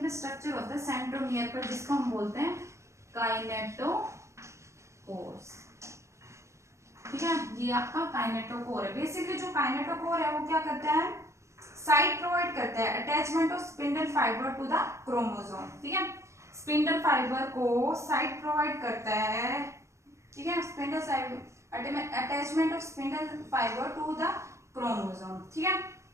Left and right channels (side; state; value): left; late; 0.14 ms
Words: में स्ट्रक्चर होता है सेंट्रोमियर पर, जिसको हम बोलते हैं काइनेटोकोर्स। ठीक है, ये आपका काइनेटोकोर है। बेसिकली जो काइनेटोकोर है वो क्या करता है, साइट प्रोवाइड करता है attachment of spindle fibre to the chromosome. ठीक है, स्पिंडल फाइबर को साइट प्रोवाइड करता है। ठीक है, spindle attachment of spindle fibre to the chromosome. ठीक है,